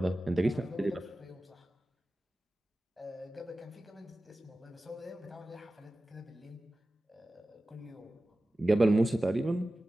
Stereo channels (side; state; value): both; normal; correlation 0.95